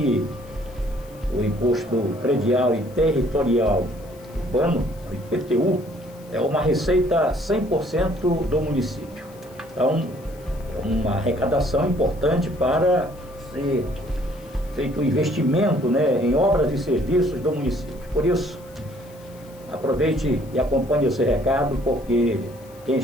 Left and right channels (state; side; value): noise; left; hiss, 26 dB below the sound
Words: o Imposto Predial e Territorial Urbano, o IPTU, é uma receita 100% do município. Então, é uma arrecadação importante para ser feito um investimento, em obras e serviços do município. Por isso, aproveite e acompanhe esse recado, porque quem